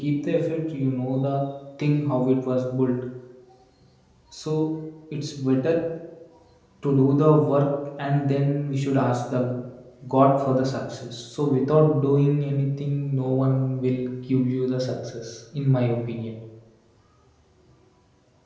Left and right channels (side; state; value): both; identical; correlation 1.00